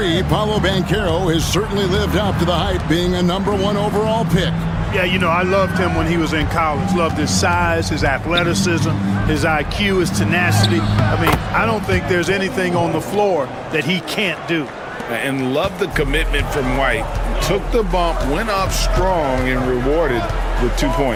Paolo Banchero has certainly lived up to the hype, being a #1 overall pick. Yeah, you know, I loved him when he was in college. Loved his size, his athleticism, his IQ, his tenacity. I mean, I don't think there's anything on the floor that he can't do. And love the commitment from White. Took the bump, went up strong, and rewarded with 2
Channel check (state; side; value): identical; both; correlation 1.00